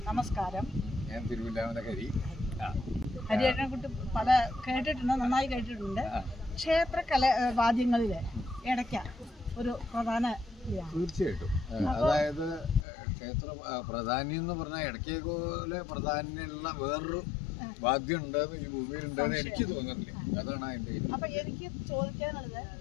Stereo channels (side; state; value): right; drops out; at 12.9 s